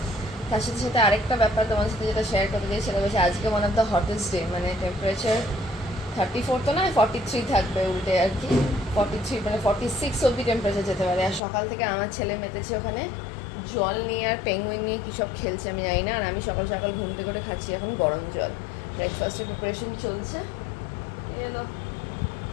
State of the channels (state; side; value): drops out; right; at 11.4 s